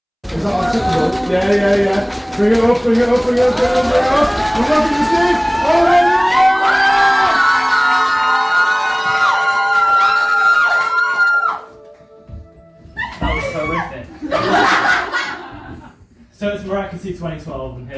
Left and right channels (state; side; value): identical; both; correlation 1.00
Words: Is that acceptable? Yeah. Bring it up. We're not going to see. That was horrific. So it's Miraculous 2012, and